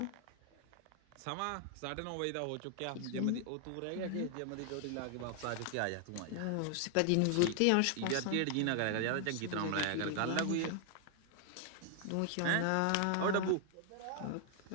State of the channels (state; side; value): different; both; correlation 0.00